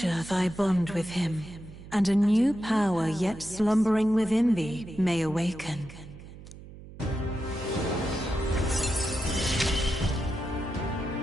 thy bond with him, and a new power yet slumbering within thee may awaken.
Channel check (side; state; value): right; noise; hum, 16 dB below the sound